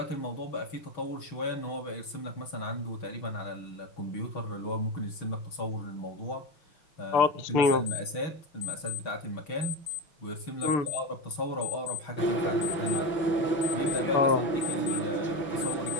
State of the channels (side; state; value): right; late; 6.2 ms